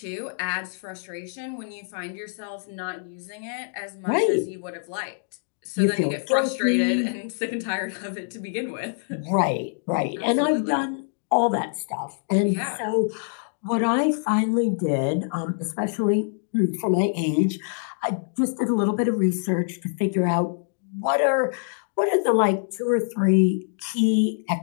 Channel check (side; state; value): right; silent; digital silence